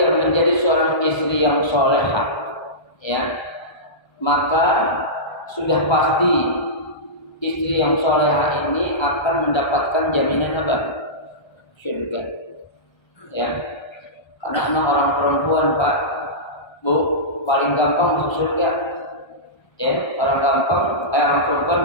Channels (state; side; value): late; right; 1.3 ms